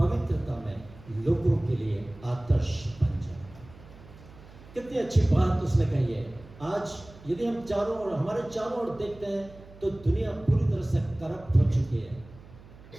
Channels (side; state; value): right; noise; hum, 21 dB below the sound